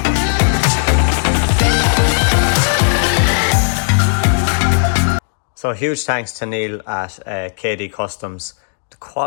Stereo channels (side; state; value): right; silent; digital silence